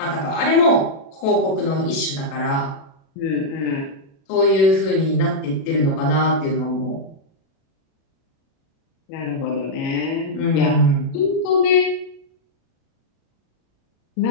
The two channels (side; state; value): right; late; 37 ms